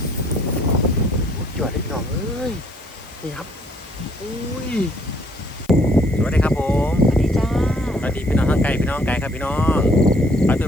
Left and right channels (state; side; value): noise; left; hiss, 26 dB below the sound